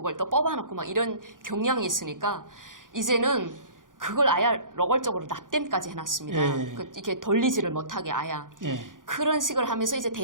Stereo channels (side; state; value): left; late; 0.89 ms